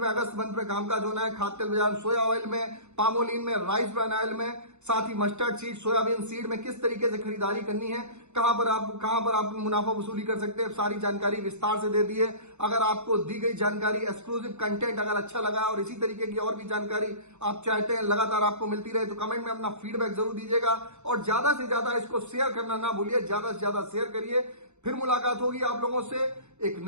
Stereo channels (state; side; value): late; left; 0.82 ms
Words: अगस्त मंथ में कामकाज होना है। खाद्य तेल बाजार सोया ऑयल में, पामोलिन में, राइस ब्रान ऑयल में, साथ ही मस्टर्ड सीड, सोयाबीन सीड में किस तरीके से खरीदारी करनी है, कहां पर आप मुनाफा वसूली कर सकते हैं, सारी जानकारी विस्तार से दे दी है। अगर आपको दी गई जानकारी, एक्सक्लूसिव कंटेंट अगर अच्छा लगा और इसी तरीके की और भी जानकारी आप चाहते हैं लगातार आपको मिलती रहे तो कमेंट में अपना फीडबैक जरूर दीजिएगा और ज्यादा से ज्यादा इसको शेयर करना ना भूलिए, ज्यादा से ज्यादा शेयर करिए। फिर मुलाकात होगी आप लोगों से एक